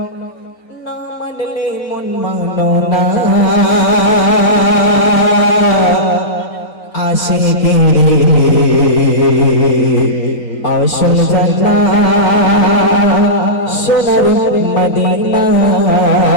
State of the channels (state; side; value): late; right; 3.9 ms